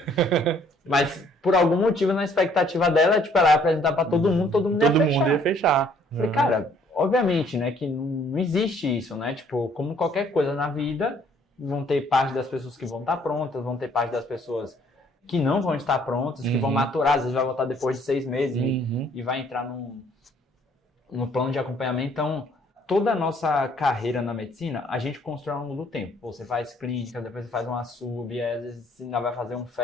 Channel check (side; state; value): both; normal; correlation 0.62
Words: Mas por algum motivo na expectativa dela, tipo, ela ia apresentar pra todo mundo ia fechar. Falei, cara, obviamente, né, que não existe isso, né? Tipo, como qualquer coisa na vida, vão ter parte das pessoas que vão estar prontas, vão ter parte das pessoas que não vão estar prontas, que vão maturar, às vezes vai voltar depois de 6 meses e vai entrar no plano de acompanhamento. Então, toda a nossa carreira na medicina, a gente constrói ao longo do tempo. Você faz clínica, depois você faz uma sub, às vezes você ainda vai fazer um